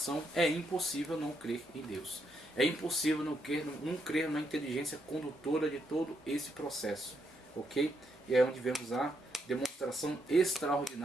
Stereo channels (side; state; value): both; normal; correlation 0.78